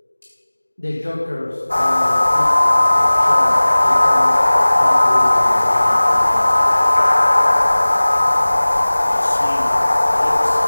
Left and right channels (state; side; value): inverted; both; correlation -1.00